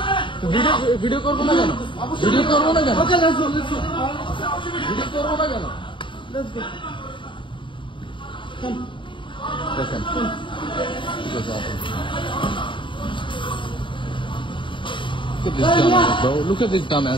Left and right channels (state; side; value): late; right; 0.24 ms